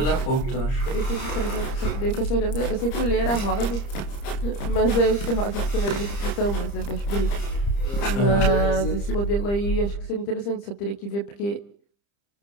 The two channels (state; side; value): late; right; 30 ms